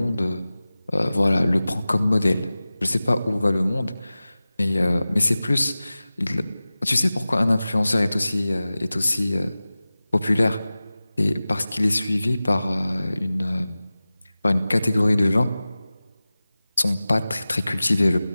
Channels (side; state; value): both; inverted; correlation -0.97